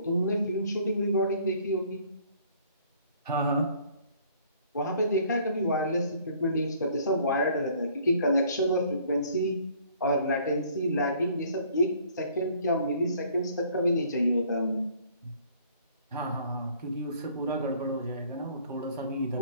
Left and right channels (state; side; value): inverted; both; correlation -0.58